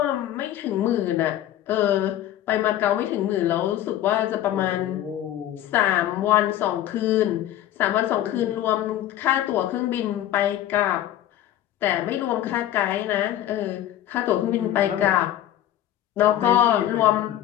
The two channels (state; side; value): quieter; right; 12.5 dB